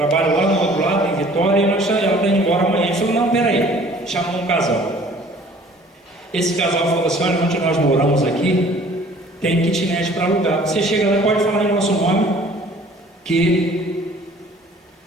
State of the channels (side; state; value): both; normal; correlation 0.52